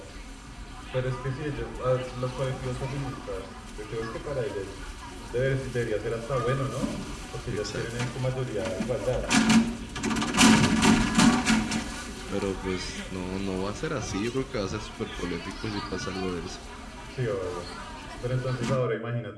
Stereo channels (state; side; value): identical; both; correlation 1.00